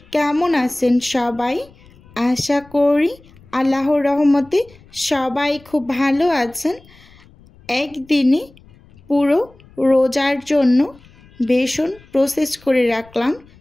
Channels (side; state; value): left; noise; rumble, 26 dB below the sound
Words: কেমন আছেন সবাই? আশা করি আল্লাহর রহমতে সবাই খুব ভালো আছেন। একদিনে পুরো রোজার জন্য বেসন প্রসেস করে রাখলাম,